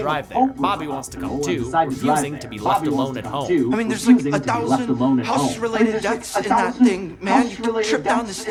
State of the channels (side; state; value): both; identical; correlation 1.00